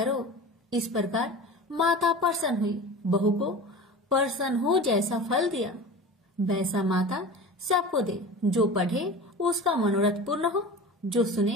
इस प्रकार माता प्रसन्न हुई, बहू को प्रसन्न हो जैसा फल दिया वैसा माता सबको दे। जो पढ़े उसका मनोरथ पूर्ण हो, जो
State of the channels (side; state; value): both; normal; correlation 0.34